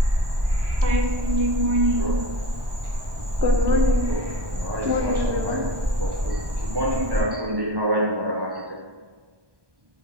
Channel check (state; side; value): late; left; 1.2 ms